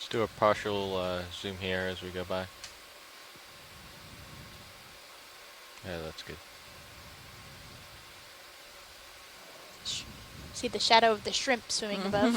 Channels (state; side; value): identical; both; correlation 1.00